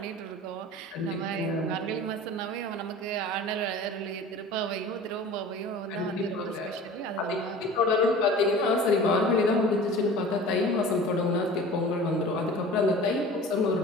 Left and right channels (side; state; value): both; normal; correlation 0.40